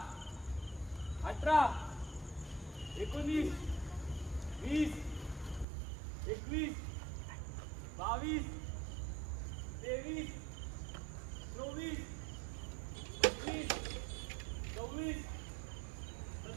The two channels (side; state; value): left; drops out; at 5.7 s